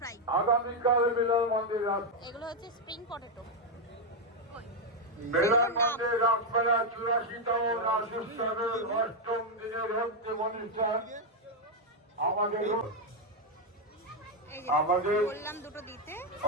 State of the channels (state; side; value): normal; both; correlation 0.02